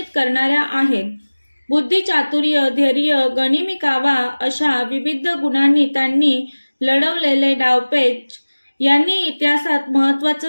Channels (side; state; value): both; inverted; correlation -1.00